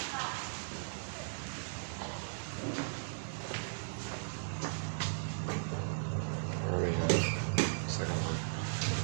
Where are we? Second one.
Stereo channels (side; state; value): left; silent; digital silence